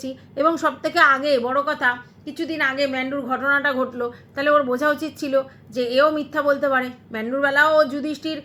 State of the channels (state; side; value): identical; both; correlation 1.00